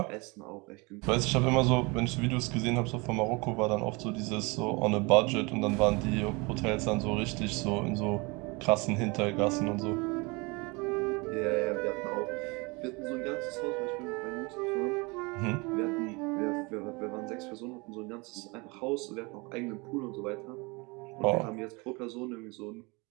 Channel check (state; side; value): quieter; left; 27.3 dB